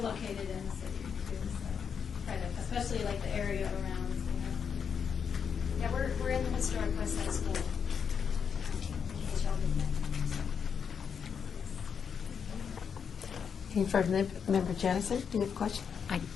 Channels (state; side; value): quieter; right; 6.9 dB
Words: located in the city too, so try to, especially like the area around, Yeah, we're in the historic West Side School. In case y'all didn't know. Any further, Member Jennison, do you have a question?